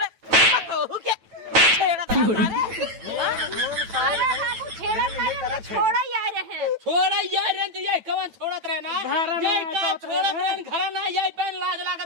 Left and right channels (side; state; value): left; late; 9.0 ms